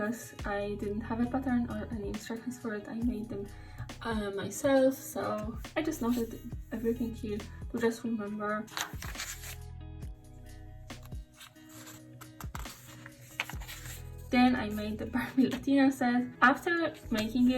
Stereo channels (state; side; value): identical; both; correlation 1.00